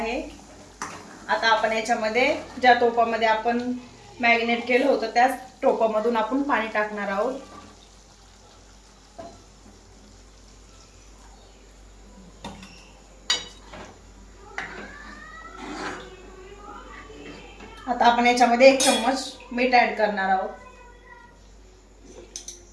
आता आपण याच्यामध्ये ज्या टोपामध्ये आपण मॅरिनेट केलं होतं त्याच टोपामधून आपण पाणी टाकणार आहोत. आता आपण याच्यामध्ये 1 चम्मच मीठ ऍड करणार आहोत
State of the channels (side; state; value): both; identical; correlation 1.00